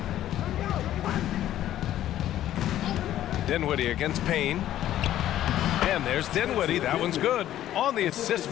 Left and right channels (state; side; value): quieter; right; 12.6 dB